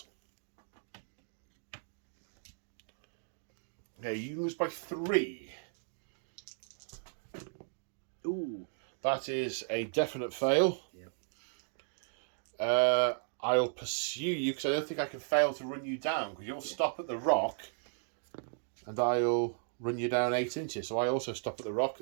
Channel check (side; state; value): left; silent; digital silence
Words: Okay, you lose by 3. Ooh. That is a definite fail. Yep. I'll pursue you because I don't think I can fail to run you down because you'll stop at the rock and I'll run you down 8 inches. So I also stop at the rock.